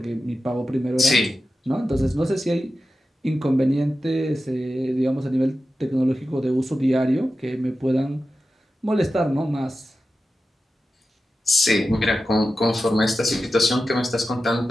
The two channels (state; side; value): normal; both; correlation 0.92